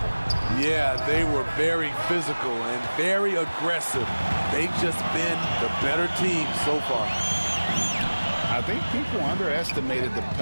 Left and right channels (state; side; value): inverted; both; correlation -1.00